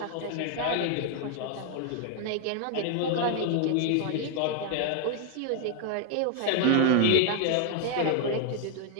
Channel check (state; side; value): different; both; correlation 0.00